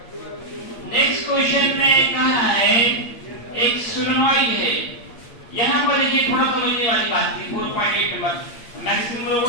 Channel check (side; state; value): right; late; 8.6 ms